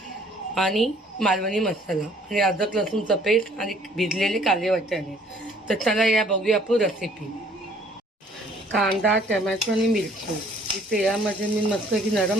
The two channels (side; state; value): both; normal; correlation 0.58